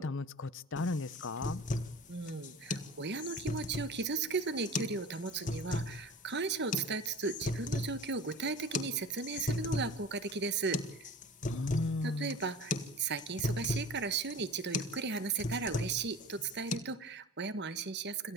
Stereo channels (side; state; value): both; normal; correlation 0.38